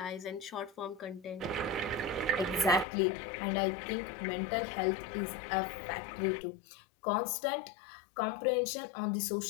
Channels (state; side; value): drops out; right; at 2.9 s